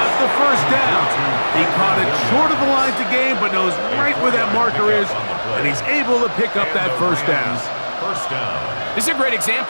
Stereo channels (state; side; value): inverted; both; correlation -1.00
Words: the 1st down. He caught it short of the line to gain, but knows right where that marker is, and he's able to pick up that 1st down. This is a great